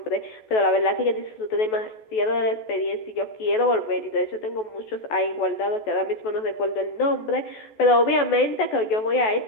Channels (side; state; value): right; late; 14 ms